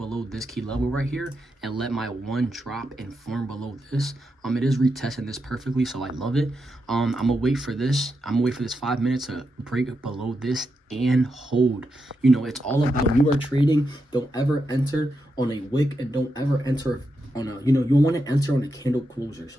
this key level right here and let my 1 drop and form below this, it is retesting this perfectly, so I love it. I'm gonna wait for this. I'm gonna wait for this 5 minutes to break below this and hold. It's all about, when you are trading, don't ever enter on a wick, and don't ever enter on a, you want to enter on a candle closure.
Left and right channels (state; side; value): normal; both; correlation 0.85